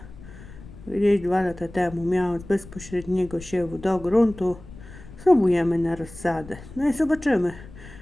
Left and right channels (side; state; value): left; noise; rumble, 17 dB below the sound